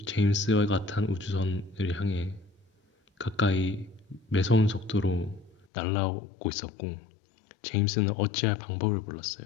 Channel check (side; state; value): right; drops out; at 5.7 s